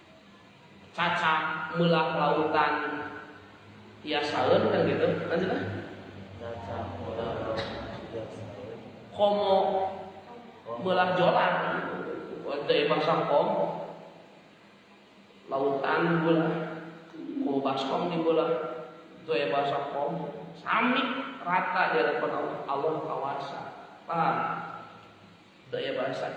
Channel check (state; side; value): identical; both; correlation 1.00